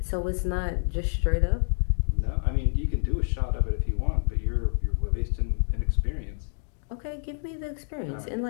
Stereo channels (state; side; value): silent; right; digital silence